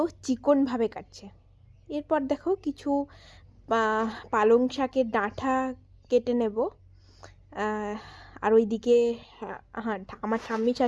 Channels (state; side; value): identical; both; correlation 1.00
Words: চিকনভাবে কাটছে। এরপর দেখো কিছু পালং শাকের ডাঁটা কেটে নেব। আর ওইদিকে হ্যাঁ, আমার ঠাম্মি